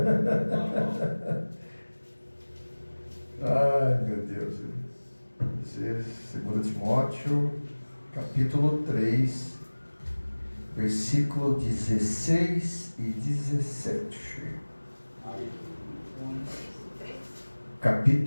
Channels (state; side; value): inverted; both; correlation -1.00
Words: Ai, meu Deus. 2 Timóteo, capítulo 3, versículo 16 e 17.